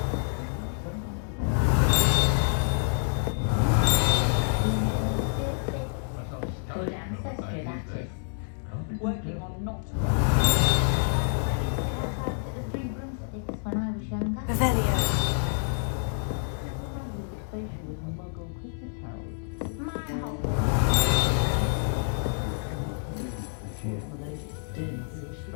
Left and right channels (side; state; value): right; silent; digital silence